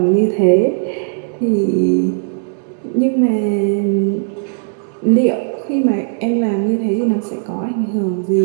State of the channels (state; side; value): silent; left; 68 dB below the other